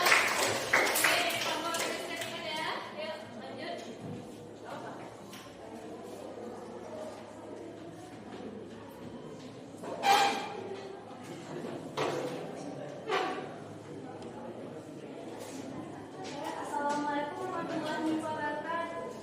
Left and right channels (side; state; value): both; identical; correlation 1.00